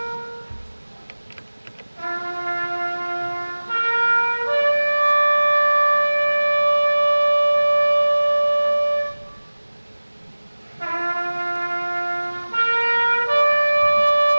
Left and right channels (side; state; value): both; inverted; correlation -1.00